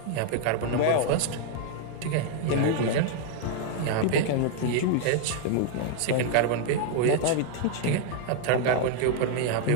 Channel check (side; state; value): both; different; correlation 0.00